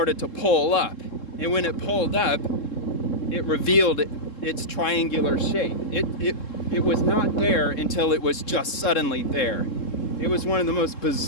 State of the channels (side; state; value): right; late; 3.7 ms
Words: to pull up, and when it pulled up, it revealed its triangular shape. It was not there until it was just suddenly there. It was one of the most